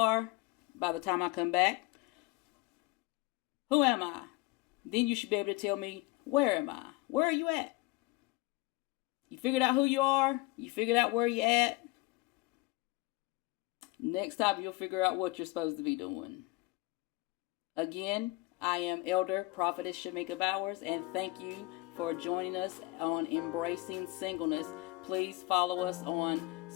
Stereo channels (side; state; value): right; quieter; 21.9 dB